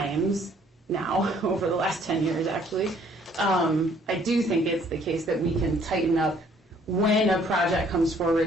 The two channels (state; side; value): normal; both; correlation 0.61